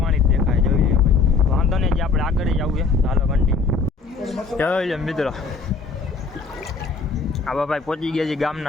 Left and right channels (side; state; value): right; quieter; 4.7 dB